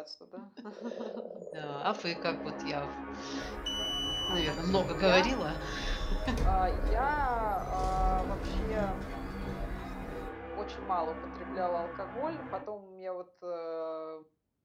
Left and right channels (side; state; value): both; identical; correlation 1.00